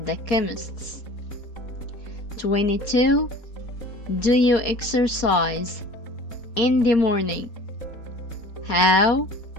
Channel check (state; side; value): late; right; 4.3 ms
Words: the chemist's. 22. Do you exercise in the morning? How,